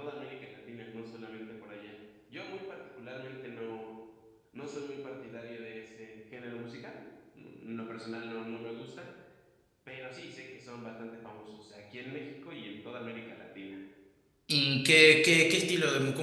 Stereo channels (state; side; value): identical; both; correlation 1.00